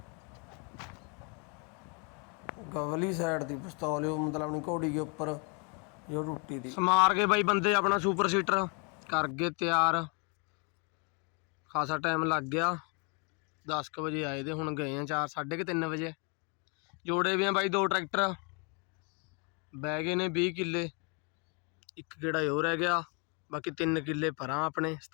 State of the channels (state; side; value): quieter; right; 34.5 dB